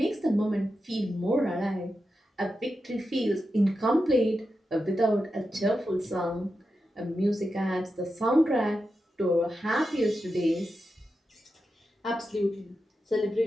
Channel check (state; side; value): normal; both; correlation 0.89